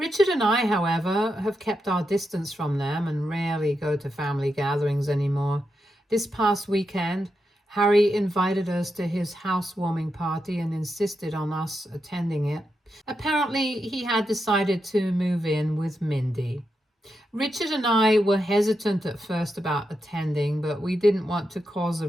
and I, however, have kept our distance from them and rarely go to family gatherings anymore. This past weekend, Harry invited us to his housewarming party and insisted on us attending it. Apparently, he had decided to move in with Mindy. Richard and I were hesitant at first about attending, but we didn't want to cause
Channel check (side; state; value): both; normal; correlation 0.86